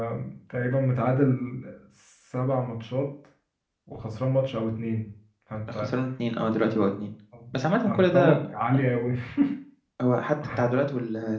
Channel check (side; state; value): both; identical; correlation 1.00